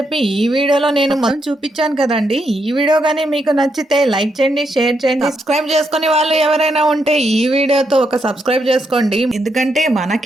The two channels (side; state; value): both; normal; correlation 0.80